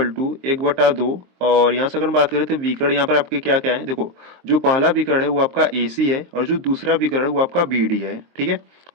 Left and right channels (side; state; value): left; late; 23 ms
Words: टू 1/2, और यहाँ से अगर हम बात करें तो विकर्ण यहाँ पर आपके क्या क्या है, देखो जो पहला विकर्ण है वो आपका AC है और जो दूसरा विकर्ण है वो आपका BD है। ठीक है,